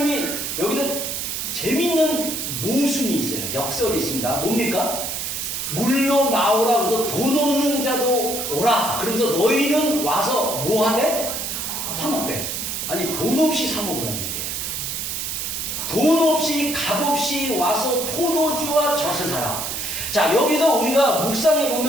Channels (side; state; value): right; noise; hiss, 3 dB below the sound